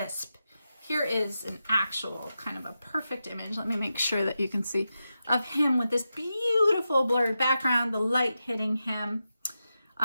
Here is an actual kind of a perfect image. Let me make sure that you can see of him with this beautiful blurred background, the light hitting him.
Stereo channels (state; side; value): inverted; both; correlation -0.90